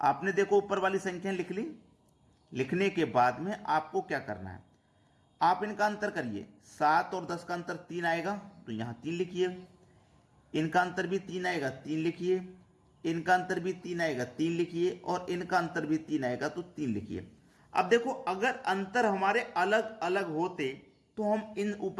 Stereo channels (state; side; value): identical; both; correlation 1.00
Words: देखो ऊपर वाली संख्या लिख ली, लिखने के बाद में आपको क्या करना है, आप इनका अंतर करिए। 7 और 10 का अंतर 3 आएगा तो यहां 3 लिखिए, इनका अंतर भी 3 आएगा 3 लिखिए, इनका अंतर भी 3 आएगा 3 लिखिए, और इनका अंतर भी 3 आएगा तो 3 लिखिए। अब देखो अगर अंतर हमारे अलग अलग होते तो हम इन